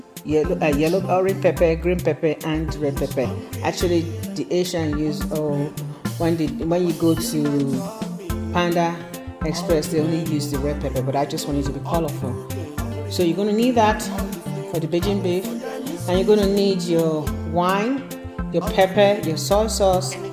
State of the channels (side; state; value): both; identical; correlation 1.00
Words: yellow, orange pepper, green pepper, and red pepper. Actually, the Asian use when you go to Panda Express, they only use the red pepper, but I just want it to be colorful. So you're going to need that for the Beijing beef, and you're going to need your wine, your pepper, your soy sauce,